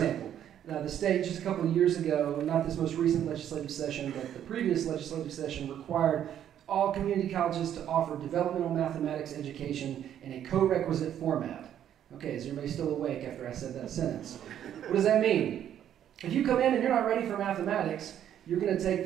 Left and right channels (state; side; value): quieter; left; 10.3 dB